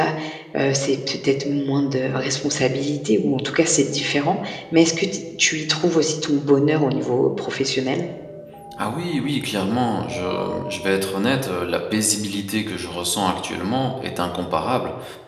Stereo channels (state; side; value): identical; both; correlation 1.00